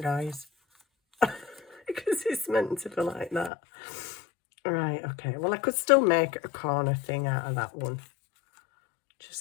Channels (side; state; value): right; drops out; at 3.5 s